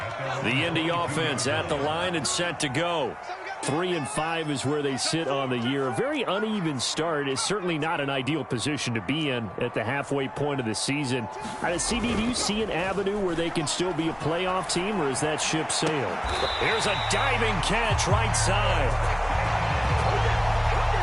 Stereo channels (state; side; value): identical; both; correlation 1.00